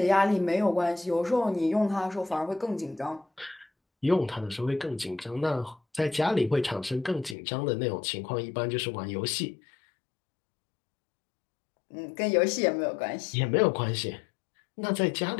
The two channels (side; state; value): right; drops out; at 7.4 s